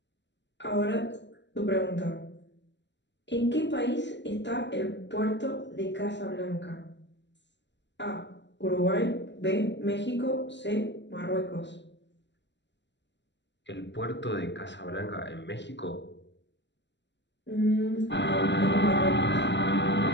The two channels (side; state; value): right; late; 0.52 ms